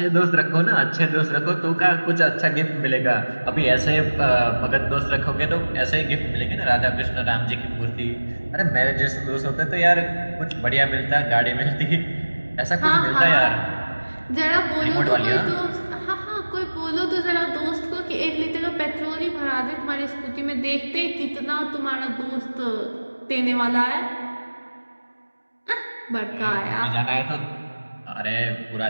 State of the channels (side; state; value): both; inverted; correlation -1.00